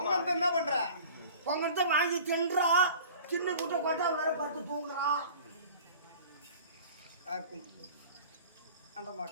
பொங்கல் என்ன பண்ற பொங்கத்தை வாங்கி தின்றா சின்ன குட்டை கொட்டா வேற படுத்து தூங்குறா காக்கும் அந்த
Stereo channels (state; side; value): inverted; both; correlation -0.44